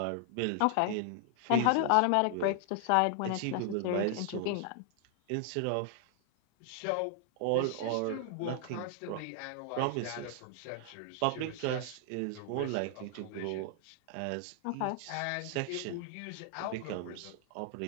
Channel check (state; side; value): different; both; correlation 0.00